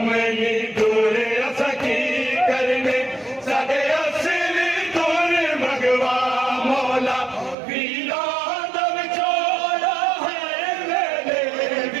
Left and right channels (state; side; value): drops out; left; at 7.6 s